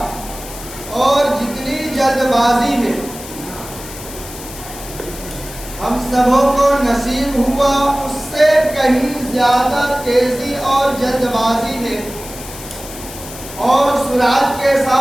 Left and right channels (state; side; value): noise; left; hiss, 13 dB below the sound